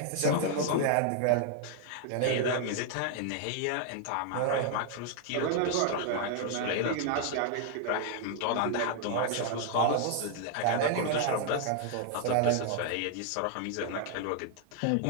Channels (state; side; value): different; both; correlation 0.00